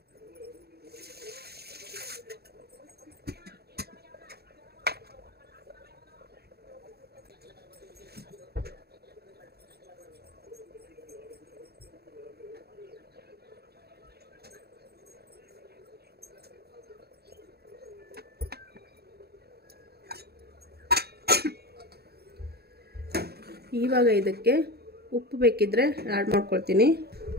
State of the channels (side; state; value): left; late; 0.46 ms